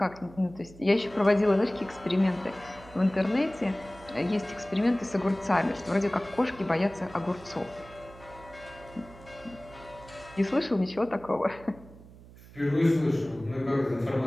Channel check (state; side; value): noise; right; hum, 20 dB below the sound